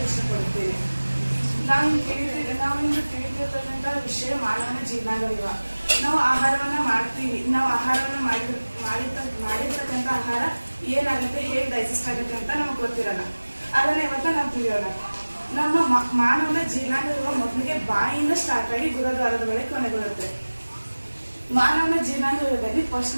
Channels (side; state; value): both; inverted; correlation -1.00